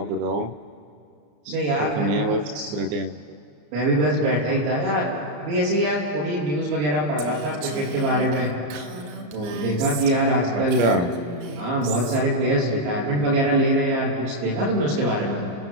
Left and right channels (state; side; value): late; left; 34 ms